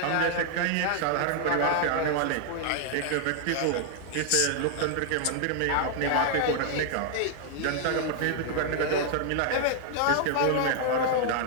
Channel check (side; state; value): both; different; correlation 0.00